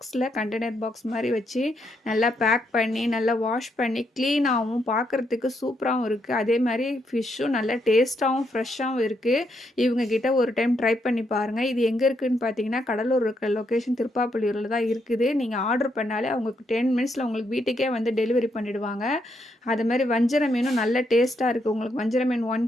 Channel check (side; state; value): both; normal; correlation 0.78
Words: கண்டெய்னர் பாக்ஸ் மாதிரி வச்சு நல்லா பேக் பண்ணி நல்லா வாஷ் பண்ணி க்ளீனாகவும் பார்க்குறதுக்கு சூப்பராகவும் இருக்குது. அதே மாதிரி ஃபிஷ்ஷும் நல்லா டேஸ்ட்டாகவும் ஃப்ரெஷ்ஷாகவும் இருக்குது. இவங்கக்கிட்ட ஒரு டைம் ட்ரை பண்ணி பாருங்கள். இது எங்கே இருக்குதுன்னு பார்த்தீங்கன்னா, கடலூர் இருக்கிற லொக்கேஷன் திருப்பாப்புலியூரில் தான் இருக்குது. நீங்கள் ஆர்டர் பண்ணாலே அவங்களுக்கு 10 மினிட்ஸில் உங்களுக்கு வீட்டுக்கே வந்து டெலிவரி பண்ணிவிடுவாங்க. அது மாதிரி வஞ்சர மீனும் நல்ல டேஸ்ட்டாக இருக்குது. உங்களுக்கு வஞ்சர மீன் 1